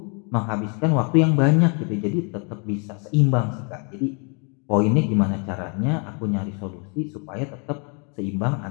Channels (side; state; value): right; quieter; 36.5 dB